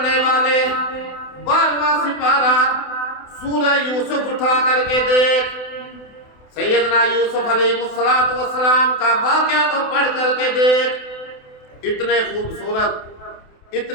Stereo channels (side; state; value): right; late; 28 ms